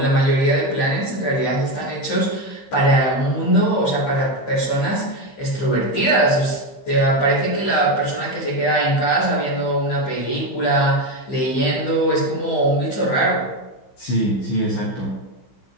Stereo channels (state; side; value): late; right; 15 ms